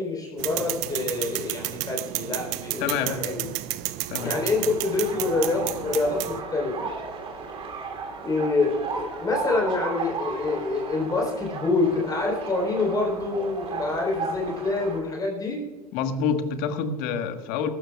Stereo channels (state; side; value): normal; both; correlation 0.45